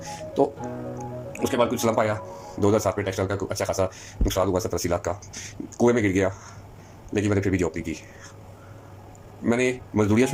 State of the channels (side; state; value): both; identical; correlation 1.00